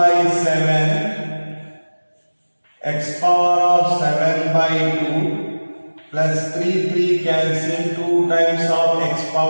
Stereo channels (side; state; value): both; inverted; correlation -1.00